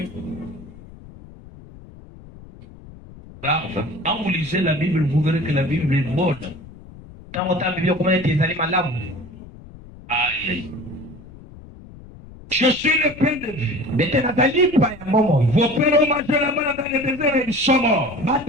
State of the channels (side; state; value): left; noise; rumble, 19 dB below the sound